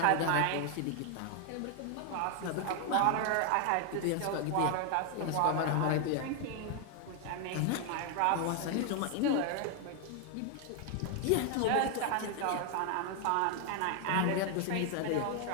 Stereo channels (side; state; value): both; different; correlation 0.00